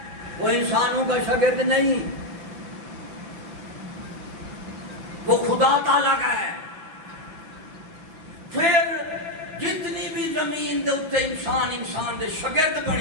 وہ انسانوں کا شاگرد نہیں، وہ خدا تعالیٰ کا ہے. پھر جتنی بھی زمین دے اتنے انسان دے شاگرد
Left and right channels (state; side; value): late; left; 6.2 ms